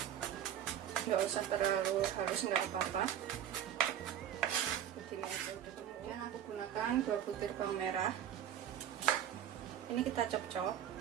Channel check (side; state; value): left; quieter; 10.2 dB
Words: Nggak usah terlalu halus, nggak apa-apa. Begini aja udah. Kemudian aku gunakan 2 butir bawang merah. Ini kita cop-cop,